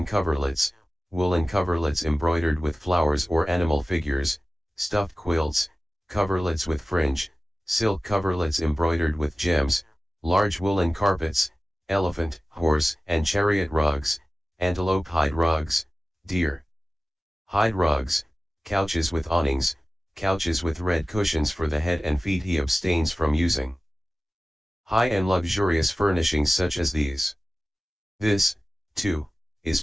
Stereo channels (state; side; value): normal; both; correlation 0.96